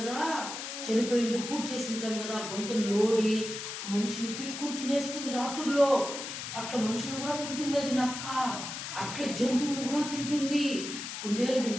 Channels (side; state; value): left; noise; hiss, 7 dB below the sound